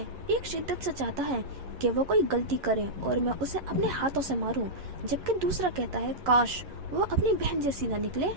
एक शिद्दत से चाहता है कि वो कोई गलती करे और मैं उसे अपने हाथों से मारूं, जबकि दूसरा कहता है काश वो अपनी बहन जैसी ना निकले।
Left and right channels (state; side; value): late; left; 11 ms